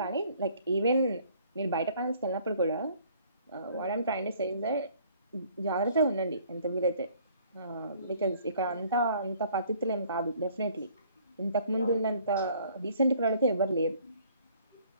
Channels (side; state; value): both; inverted; correlation -0.58